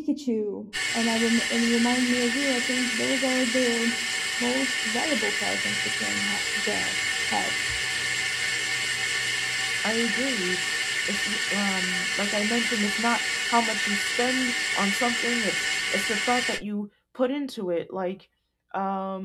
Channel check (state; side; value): identical; both; correlation 1.00